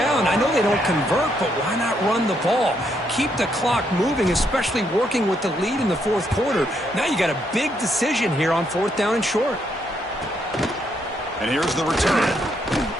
I know they don't convert, but why not run the ball? Keep the clock moving, especially working with the lead in the 4th quarter. Now you got a big decision here on 4th down and short. And here's the return.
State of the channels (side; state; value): both; normal; correlation 0.75